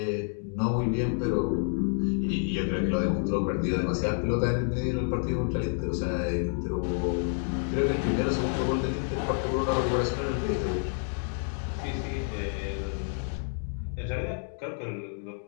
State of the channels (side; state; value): right; silent; 59 dB below the other